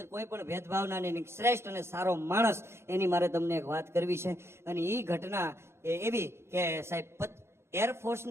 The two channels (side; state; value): left; late; 0.12 ms